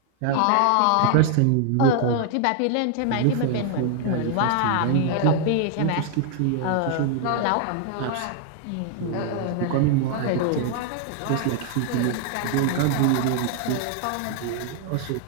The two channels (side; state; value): both; different; correlation 0.00